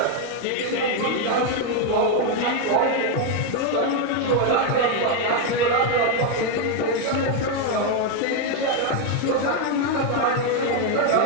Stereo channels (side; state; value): both; different; correlation 0.01